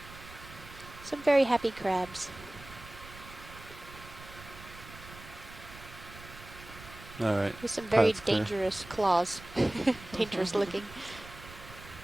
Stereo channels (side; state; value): right; noise; rumble, 17 dB below the sound